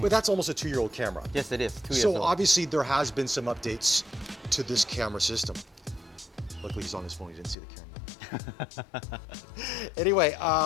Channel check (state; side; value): drops out; right; at 7.6 s